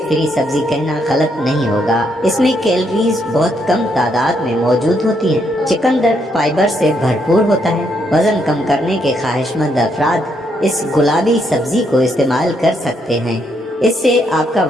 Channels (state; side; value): normal; both; correlation 0.75